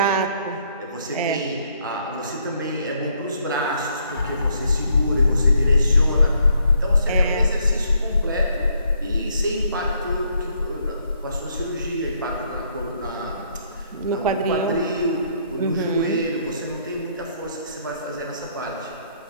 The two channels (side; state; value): both; inverted; correlation -0.69